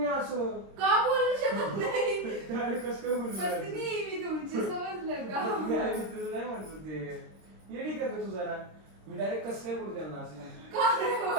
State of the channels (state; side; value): late; left; 26 ms